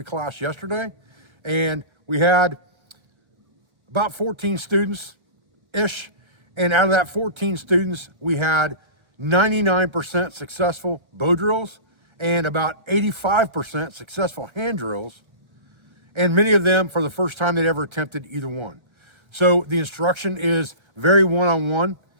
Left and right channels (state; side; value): late; left; 1.3 ms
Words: class yesterday, and we had about 14 students-ish, and out of that 14 students, we had 99% successful bow drills and about 85% successful hand drills, and many of them for the first time they'd ever attempted either one. So the instruction is very one-on-one.